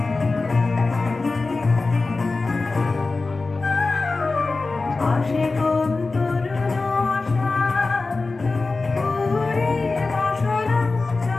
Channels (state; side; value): quieter; right; 3.7 dB